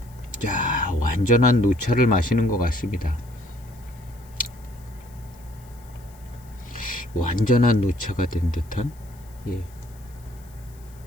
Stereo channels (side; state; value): left; noise; hiss, 27 dB below the sound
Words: 완전한 노차를 마시는 것 같습니다. 완전한 노차가 된 듯한